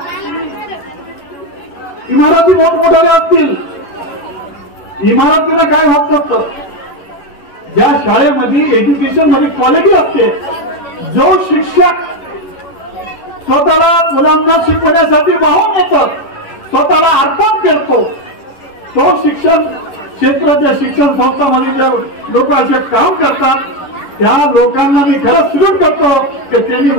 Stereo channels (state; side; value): late; right; 11 ms